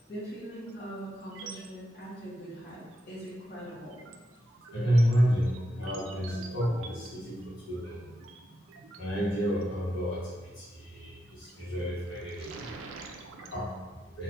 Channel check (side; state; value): both; normal; correlation 0.84